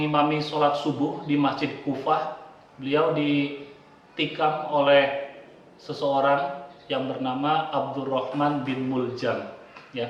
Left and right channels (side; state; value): both; identical; correlation 1.00